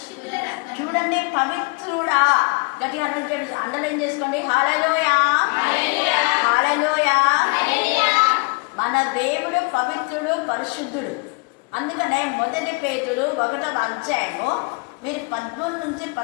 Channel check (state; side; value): quieter; right; 30.3 dB